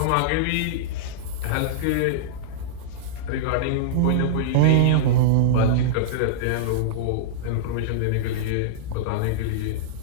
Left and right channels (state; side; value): different; both; correlation -0.02